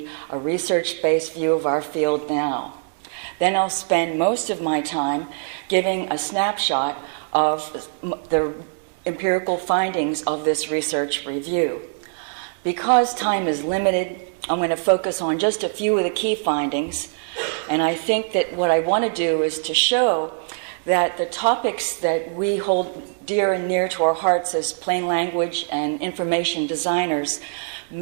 a research-based view of our field now. Then I'll spend most of my time giving a snapshot of the empirical findings of this research review. Because time is limited, I'm going to focus on just a few of the key findings, and I think that what I want to do is to show that the topics that we hold dear and near to our hearts as plain language and information designers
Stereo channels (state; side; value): silent; left; 64 dB below the other